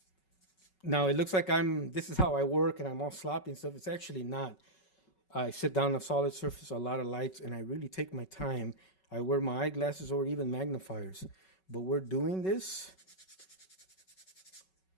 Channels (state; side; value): late; right; 5.3 ms